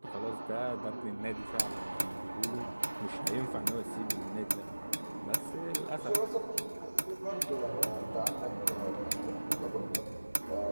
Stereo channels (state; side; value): inverted; both; correlation -1.00